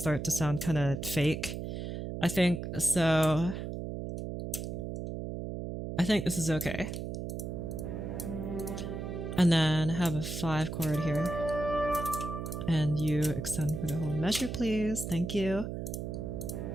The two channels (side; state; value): right; noise; hum, 5 dB below the sound